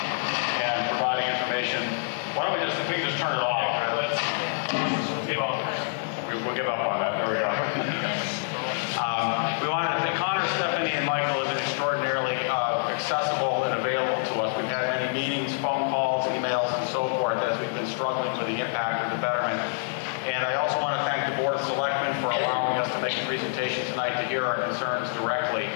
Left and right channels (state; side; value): silent; right; 60 dB below the other